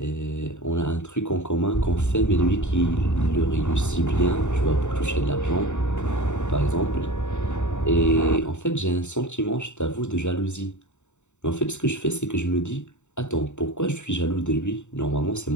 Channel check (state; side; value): late; right; 0.84 ms